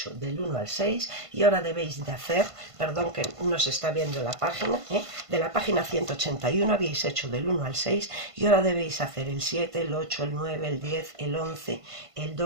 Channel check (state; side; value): late; left; 1.5 ms